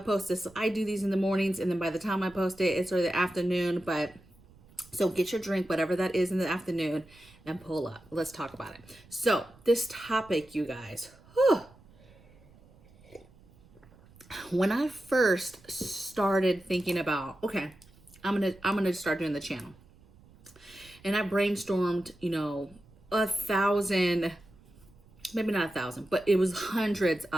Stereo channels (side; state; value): right; noise; rumble, 26 dB below the sound